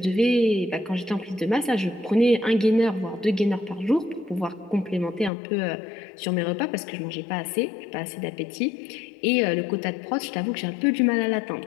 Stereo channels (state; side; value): drops out; right; at 5.3 s